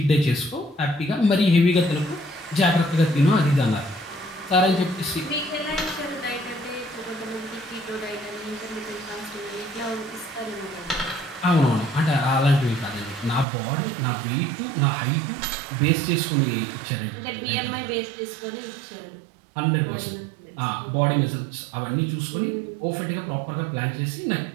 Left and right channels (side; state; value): left; drops out; at 13.5 s